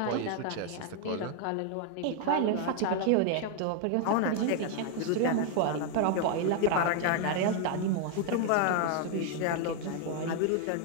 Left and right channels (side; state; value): both; different; correlation 0.00